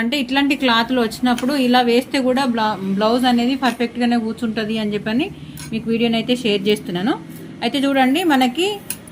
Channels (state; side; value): identical; both; correlation 1.00